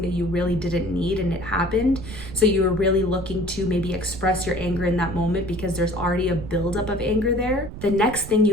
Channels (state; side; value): noise; right; rumble, 11 dB below the sound